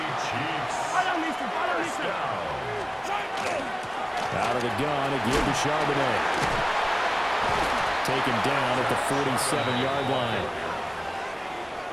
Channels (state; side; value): identical; both; correlation 1.00